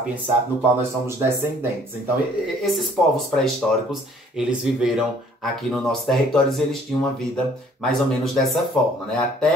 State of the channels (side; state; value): both; normal; correlation 0.58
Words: sapiens, no qual nós somos descendentes. Então, esses povos pré-históricos, eles viveram aqui no nosso território e eles tinham uma vida mais ou menos dessa forma, né,